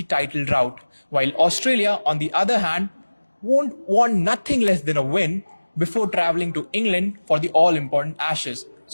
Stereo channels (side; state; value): both; inverted; correlation -1.00